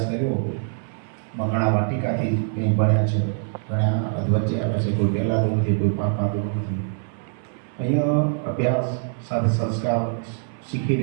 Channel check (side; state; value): left; silent; 62 dB below the other